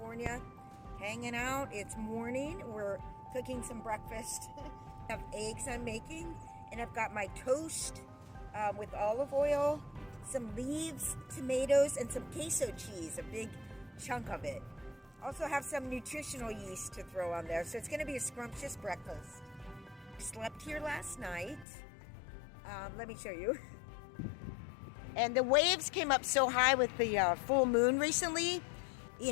hanging out. It's morning. We're cooking some breakfast. I have eggs I'm making, and I've got my toast with olive oil, some leaves, tomatoes, and some queso cheese, a big chunk of it. Also have some nutritional yeast to throw on there, so it's going to be a scrumptious breakfast. Slept here last night. Let me show you. And the waves came up so high with the full moon recently. You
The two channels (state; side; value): drops out; right; at 21.7 s